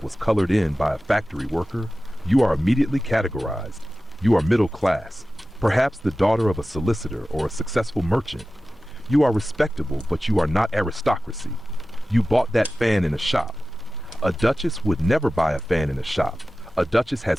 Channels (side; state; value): both; normal; correlation 0.95